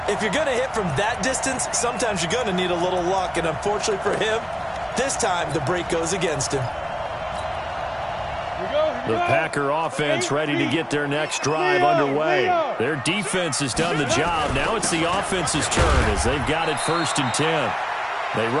If you're going to hit from that distance, sometimes you're going to need a little luck. And unfortunately for him, this time the break goes against him. The Packer offense ready to get their next drive underway. Their defense has done the job. Now it's the offense's turn as they've got it 1st and 10. They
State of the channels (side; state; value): both; identical; correlation 1.00